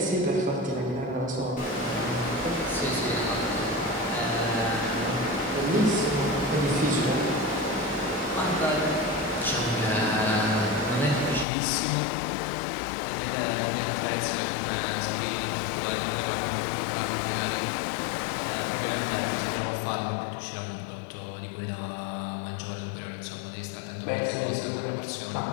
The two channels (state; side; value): drops out; right; at 11.5 s